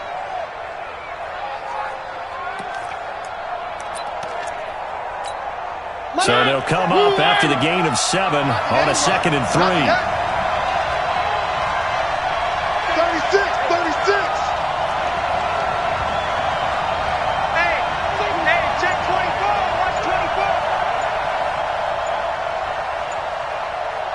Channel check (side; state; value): both; identical; correlation 1.00